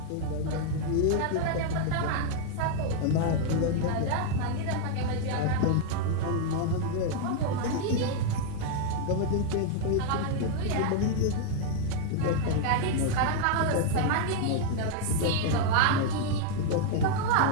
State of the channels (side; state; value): both; different; correlation 0.00